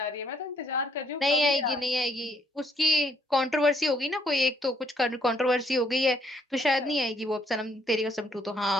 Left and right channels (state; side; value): normal; both; correlation 0.68